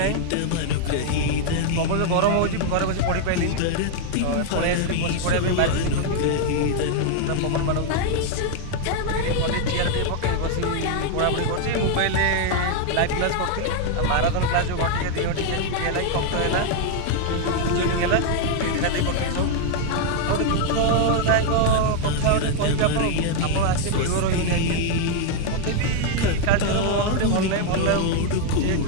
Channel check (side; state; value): both; different; correlation 0.00